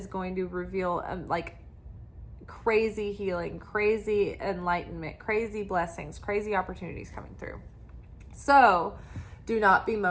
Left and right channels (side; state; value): both; identical; correlation 1.00